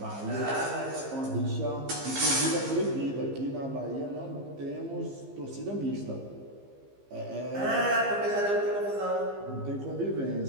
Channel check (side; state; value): left; late; 15 ms